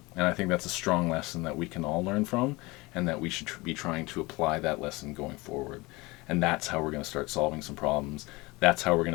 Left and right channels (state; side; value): quieter; right; 23.3 dB